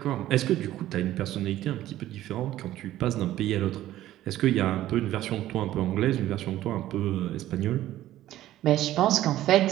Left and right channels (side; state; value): left; quieter; 14.0 dB